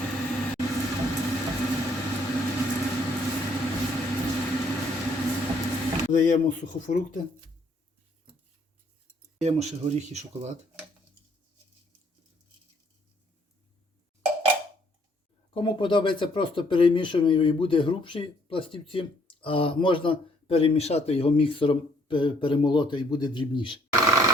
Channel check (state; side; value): normal; both; correlation 0.65